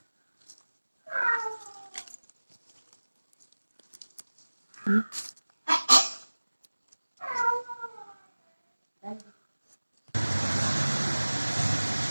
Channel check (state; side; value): inverted; both; correlation -1.00